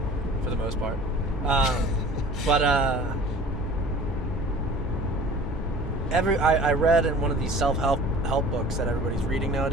for the most part. But I read in one of these self-help books that everybody's reading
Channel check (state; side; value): normal; both; correlation 0.45